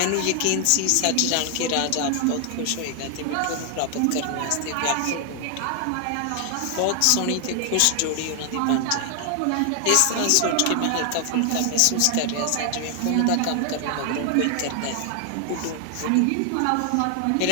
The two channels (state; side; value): different; both; correlation 0.00